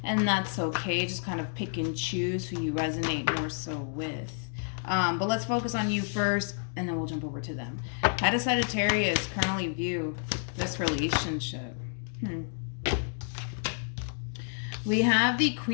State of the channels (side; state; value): right; silent; 58 dB below the other